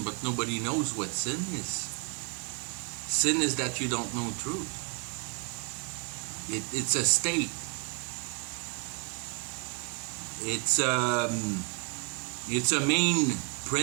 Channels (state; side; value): quieter; left; 32.6 dB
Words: but nobody knows what sin is. Sin is that you don't know truth. It's a state. It's a main